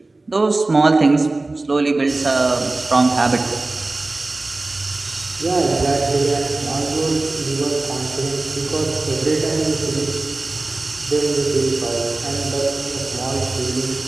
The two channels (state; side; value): quieter; left; 3.1 dB